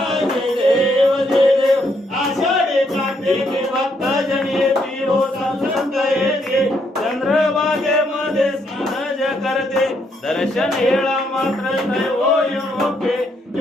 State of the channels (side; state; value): both; normal; correlation 0.74